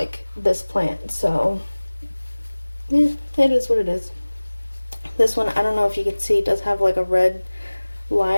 this plant. So yeah, it is what it is. This one, I don't know if you can see, it does have like a red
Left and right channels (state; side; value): inverted; both; correlation -1.00